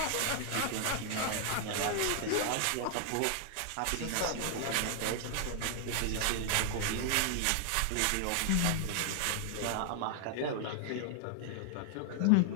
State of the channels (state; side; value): different; both; correlation 0.00